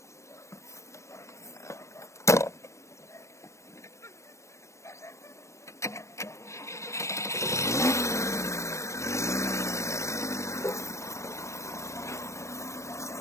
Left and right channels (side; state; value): right; late; 0.14 ms